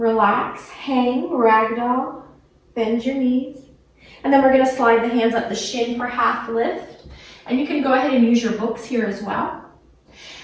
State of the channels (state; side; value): identical; both; correlation 1.00